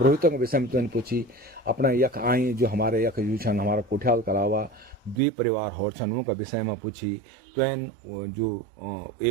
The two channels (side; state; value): left; drops out; at 5.2 s